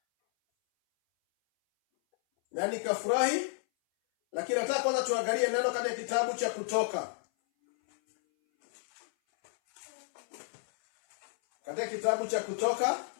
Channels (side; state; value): right; silent; 57 dB below the other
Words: Na nikafurahi, lakini nataka kwanza tuangalie neno katika kitabu cha Kutoka. Katika kitabu cha Kutoka,